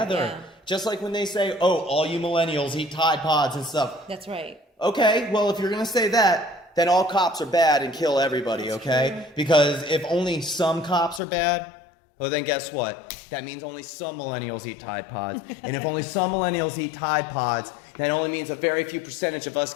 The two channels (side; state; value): right; drops out; at 11.2 s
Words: Yeah. Just like when they say, oh, all you millennials eat Tide Pods and stuff. That's right. Okay, well, if you're going to say that, then all cops are bad and kill everybody, okay? Because if only some cops are bad, well, then guess what? That means only some millennials eat Tide Pods. And if only some millennials eat Tide Pods, that only means a very few percentage of us